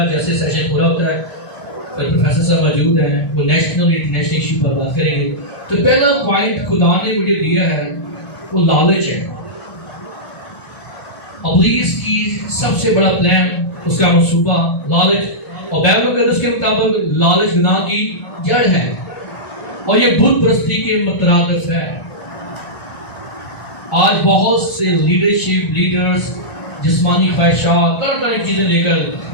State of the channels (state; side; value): late; right; 1.5 ms